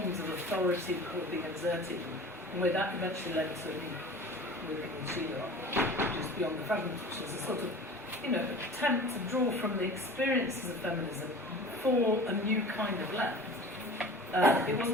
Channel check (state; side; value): normal; both; correlation 0.40